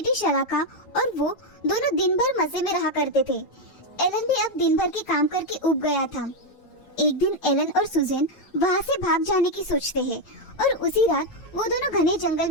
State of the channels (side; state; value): right; late; 9.1 ms